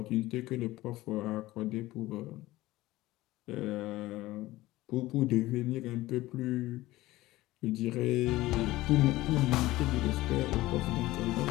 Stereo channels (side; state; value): right; quieter; 17.7 dB